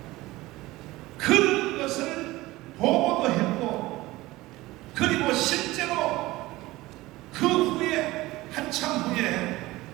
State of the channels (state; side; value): quieter; left; 18.9 dB